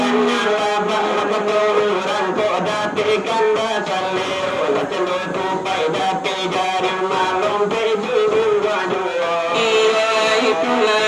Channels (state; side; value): identical; both; correlation 1.00